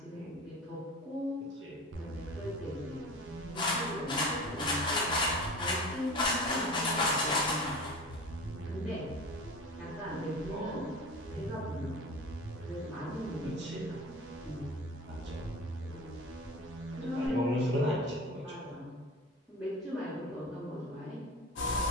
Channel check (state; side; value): normal; both; correlation 0.33